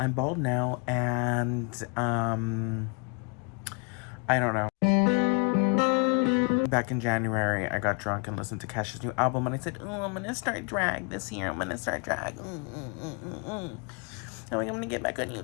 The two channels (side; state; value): right; quieter; 35.8 dB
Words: bald now, and, I don't know. Back in January, I got drunk and listened to Cash's new album, and I said, "Oh, I'm gonna start drag this year. I'm gonna start drag. I'm like, I'm gonna get back on